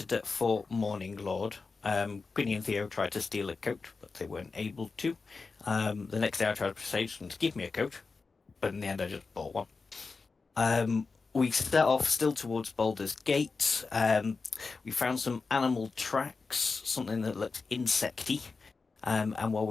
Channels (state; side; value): quieter; right; 4.4 dB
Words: at Fort Morning Lord. Quinny and Theo tried to steal a coat, but they weren't able to. The next day I tried to persuade them to give me a coat, but in the end I just bought one. We set off still towards Baldur's Gate. We found some animal tracks, something that looked insecty. And while